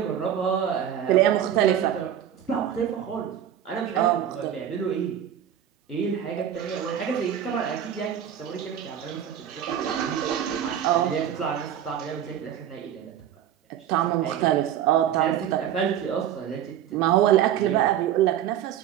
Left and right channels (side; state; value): left; quieter; 10.1 dB